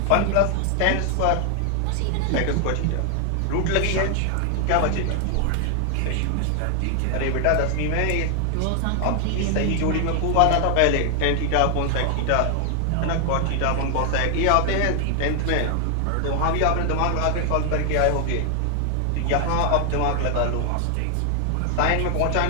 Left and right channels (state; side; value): different; both; correlation 0.00